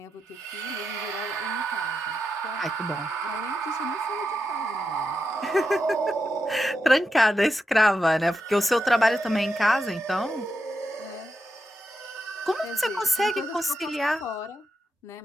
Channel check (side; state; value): both; normal; correlation 0.86